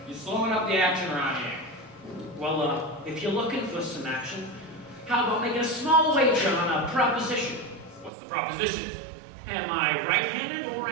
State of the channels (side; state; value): left; drops out; at 8.1 s